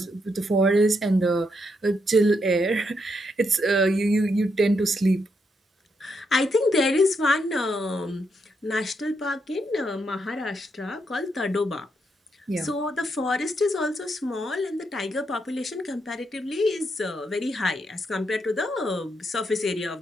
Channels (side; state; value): both; normal; correlation 0.79